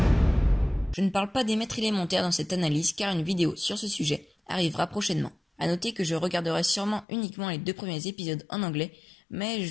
Je ne parle pas des maîtres élémentaires dans cette analyse car une vidéo sur ce sujet arrivera prochainement. À noter que je regarderai sûrement uniquement les 2 premiers épisodes en anglais, mais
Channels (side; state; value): right; drops out; at 7.1 s